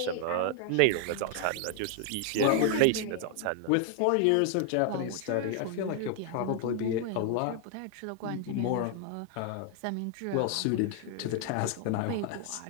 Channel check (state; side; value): different; both; correlation 0.00